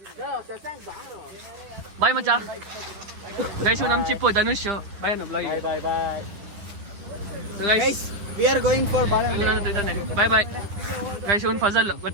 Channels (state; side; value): late; left; 9.9 ms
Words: ಬಾಯ್ ಮಚ್ಚ. ಗೈಸ್ ನಮ್ಮ ಚಿಪ್ಪು ಧನುಷ್. ಬಾಯ್ ನಮ್ಮ blog. Bye guys. We are going for bye guys. ಇವನ್ ಫಜಲ್